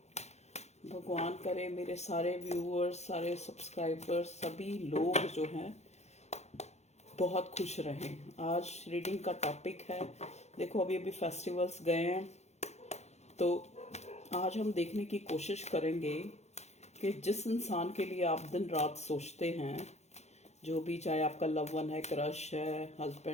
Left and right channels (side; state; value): right; late; 0.32 ms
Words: भगवान करे मेरे सारे व्यूअर्स, सारे सब्सक्राइबर्स, सभी लोग जो हैं बहुत खुश रहें। आज रीडिंग का टॉपिक है, देखो अभी अभी फेस्टिवल्स गए हैं, तो आज हम देखने की कोशिश करेंगे कि जिस इंसान के लिए आप दिन रात सोचते हैं, जो भी, चाहे आपका लव वन है, क्रश है,